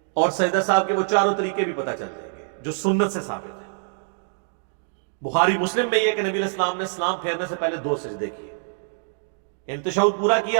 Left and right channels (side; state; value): left; silent; digital silence